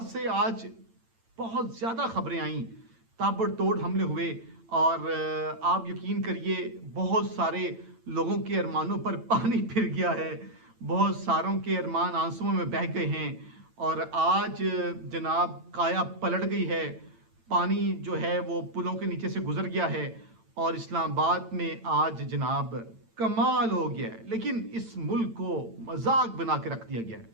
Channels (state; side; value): late; left; 8.9 ms